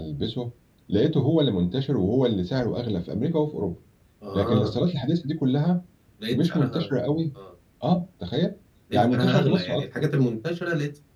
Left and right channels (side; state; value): both; identical; correlation 1.00